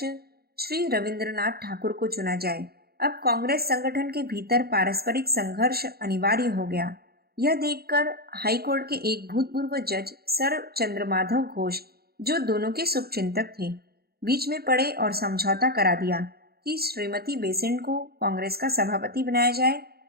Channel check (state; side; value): late; left; 0.45 ms